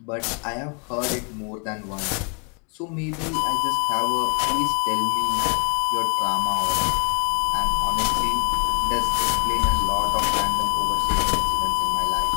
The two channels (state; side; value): quieter; right; 38.5 dB